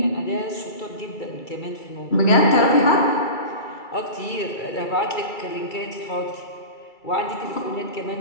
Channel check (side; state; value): right; late; 2.3 ms